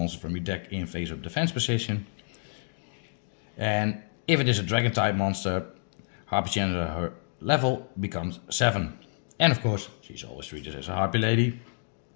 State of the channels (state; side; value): silent; right; digital silence